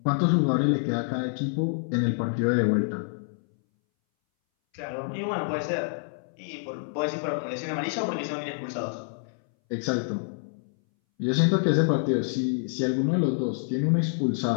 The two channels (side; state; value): right; silent; 60 dB below the other